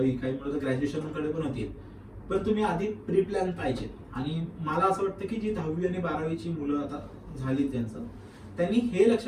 काही मुलं ग्रॅज्युएशन कडे पण होतील, पण तुम्ही आधी प्री प्लॅन पाहिजे. आणि मला असं वाटतं की जी 10वी आणि 12वीची मुलं आता झाली त्यांचं, त्यांनी हे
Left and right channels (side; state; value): both; identical; correlation 1.00